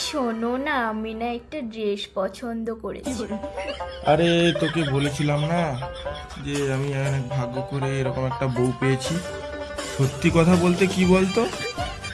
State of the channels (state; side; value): identical; both; correlation 1.00